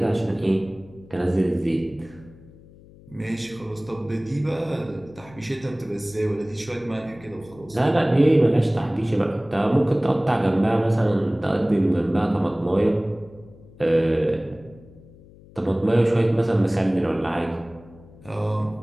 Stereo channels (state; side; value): noise; left; hum, 23 dB below the sound